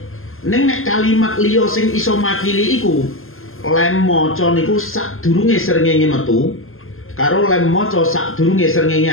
Ning nek kalimat liya sing iso makili iku lem maca niku sadurunge srengenge metu karo lem maca sadurunge srengenge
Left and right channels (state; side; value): late; right; 0.61 ms